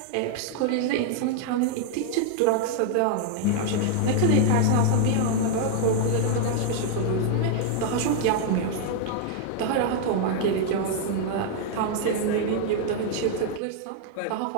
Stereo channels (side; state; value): both; different; correlation 0.00